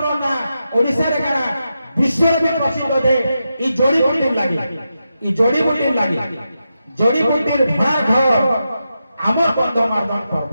ना ओडिसा रे काना विश्व में प्रसिद्ध दे ई जोड़ी बुटीर लागी जोड़ी बुटीर भड़ा घर आमर गंधमार्दन पर्व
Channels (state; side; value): inverted; both; correlation -0.88